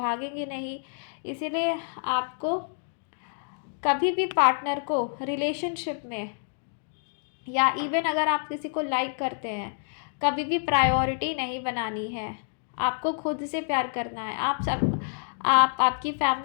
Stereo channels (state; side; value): silent; right; digital silence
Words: नहीं। इसीलिए आपको कभी भी पार्टनर को रिलेशनशिप में, या इवन अगर आप किसी को लाइक करते हैं, कभी भी प्रायोरिटी नहीं बनानी है। आपको खुद से प्यार करना है। आपकी